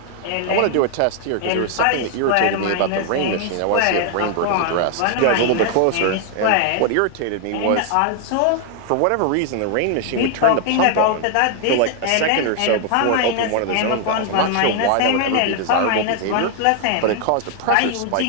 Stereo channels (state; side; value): different; both; correlation 0.00